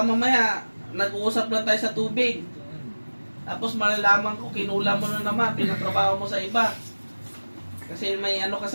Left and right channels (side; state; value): both; inverted; correlation -1.00